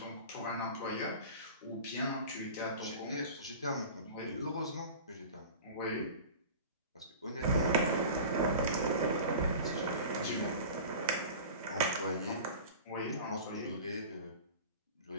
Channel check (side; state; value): both; inverted; correlation -0.37